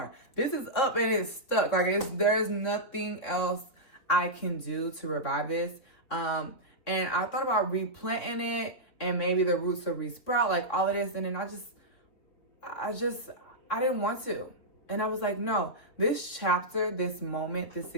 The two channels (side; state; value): right; late; 3.5 ms